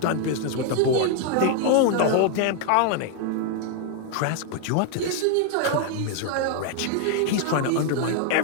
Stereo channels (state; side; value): different; both; correlation 0.00